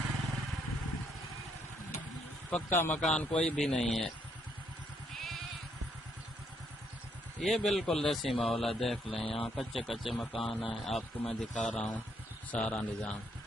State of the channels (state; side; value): normal; both; correlation 0.72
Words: पक्का मकान कोई भी नहीं है। ये बिल्कुल देसी माहौल है, देख लें। यहाँ कच्चे कच्चे मकान है, आपको मैं दिखा रहा हूँ सारा निज़ाम।